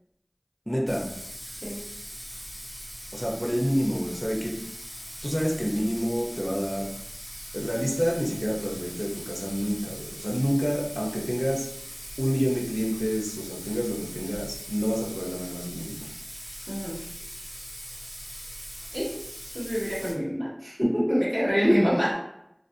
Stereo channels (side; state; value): both; identical; correlation 1.00